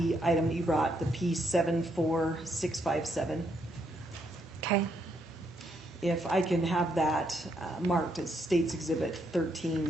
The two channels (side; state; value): both; normal; correlation 0.75